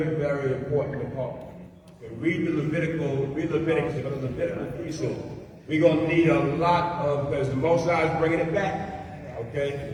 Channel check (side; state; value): both; identical; correlation 1.00